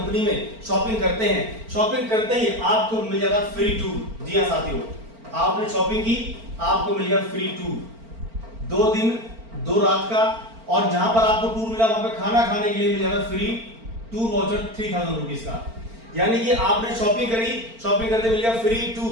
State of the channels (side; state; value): left; late; 4.4 ms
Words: में शॉपिंग करते हैं, शॉपिंग करते ही आपको मिल जाएगा फ्री टूर। जी हां साथियों, आपने शॉपिंग की, आपको मिल गया फ्री टूर 2 दिन 2 रात का। और जहां पर आपको टूर मिला वहां पर खाना खाने के लिए मिल जाएगा फ्री टूर वाउचर 3000 रुपीज का। यानी कि आपने शॉपिंग करी, शॉपिंग करते मिल गया फ्री